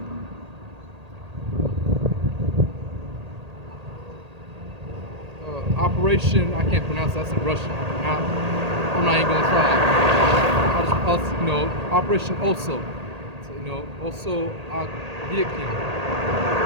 Operation, I can't pronounce that, that's in Russian. I'm not even gonna try. I'll just, you know, Operation Oso. So, you know, Oso Agviakin.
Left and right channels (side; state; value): left; late; 1.8 ms